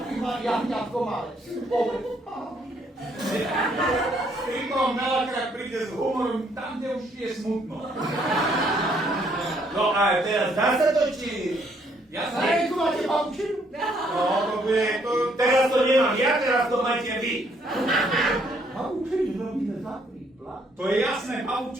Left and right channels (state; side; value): normal; both; correlation 0.68